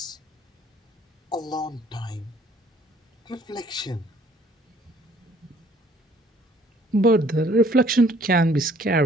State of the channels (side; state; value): both; normal; correlation 0.59